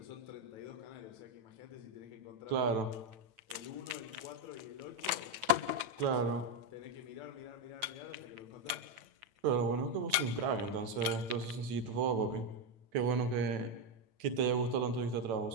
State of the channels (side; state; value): left; late; 9.0 ms